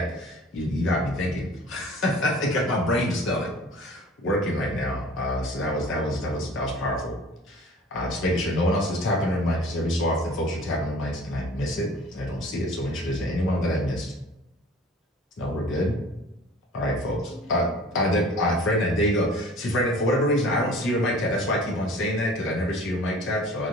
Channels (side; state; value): both; normal; correlation 0.46